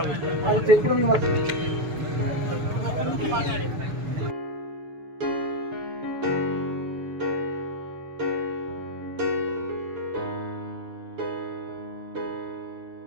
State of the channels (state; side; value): late; left; 6.7 ms